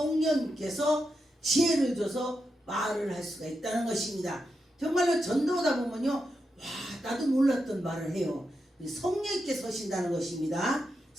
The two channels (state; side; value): normal; both; correlation 0.86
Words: 지혜를 줘서 말을 할 수가 있다는 것입니다. 정말로 전도하다 보면요, 와 나도 몰랐던 말을 해요. 성령님께서 하신다는 것입니다.